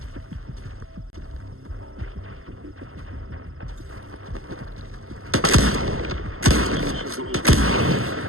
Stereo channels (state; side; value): late; left; 0.62 ms